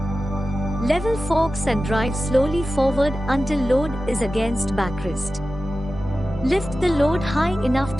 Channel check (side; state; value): both; normal; correlation 0.94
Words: Level forks and drive slowly forward until load is against backrest. Lift the load high enough